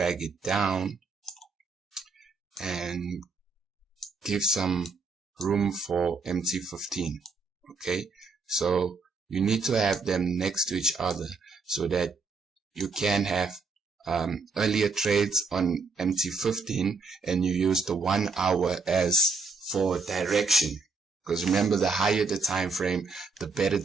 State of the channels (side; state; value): left; quieter; 4.3 dB